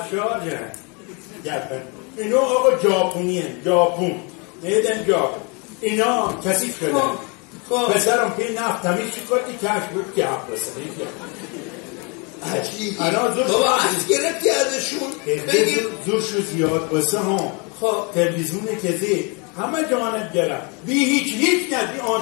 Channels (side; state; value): right; quieter; 32.1 dB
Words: گفن. اینو آقا ژاپنی هست، ژاپن نیدن ژاپن. اینا کثیف شده. پسرم پی نفت تمیز شکردی کش بود که حق بسنه. عجیبی بابا از گرفتی ازشون بگیم زورشو زیاد بسه هم تلویزیون کزی همه جانب گره بی هیچ نه بی